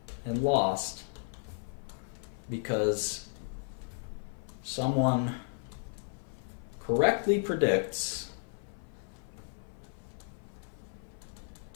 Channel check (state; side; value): silent; right; 55 dB below the other